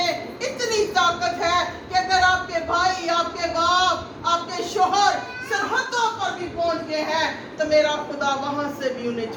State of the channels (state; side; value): identical; both; correlation 1.00